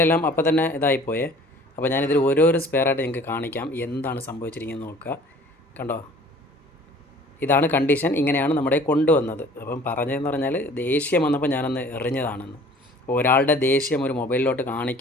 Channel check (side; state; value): both; normal; correlation 0.50